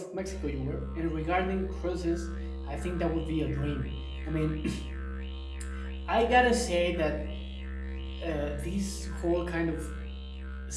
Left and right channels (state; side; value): identical; both; correlation 1.00